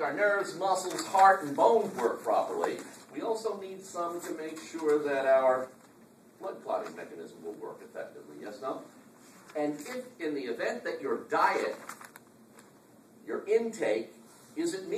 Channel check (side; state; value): both; identical; correlation 1.00